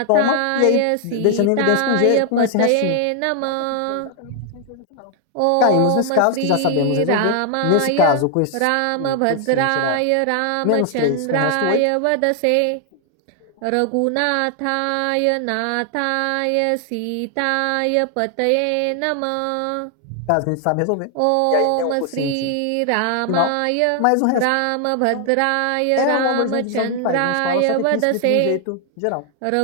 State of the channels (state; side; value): different; both; correlation 0.00